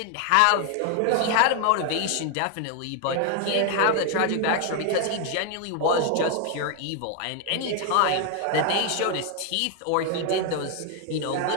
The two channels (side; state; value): both; different; correlation 0.00